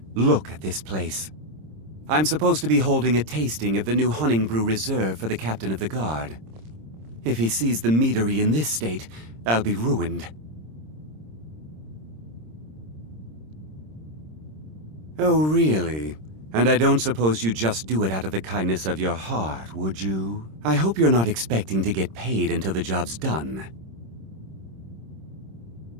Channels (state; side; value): late; left; 26 ms